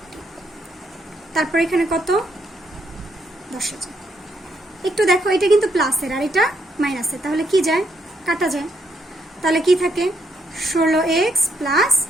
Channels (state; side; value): normal; both; correlation 0.75